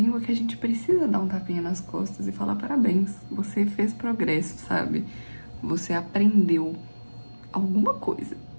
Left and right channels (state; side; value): inverted; both; correlation -1.00